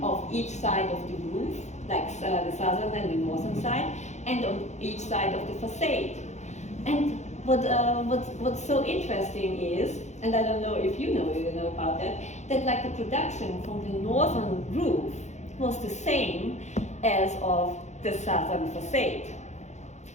of each side of the roof, like the southern and the northern side, and on each side of the facade. And what's so interesting is, and I don't know if you know about that like the production from the northern roof was the same as of the southern facade.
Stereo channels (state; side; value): late; right; 0.33 ms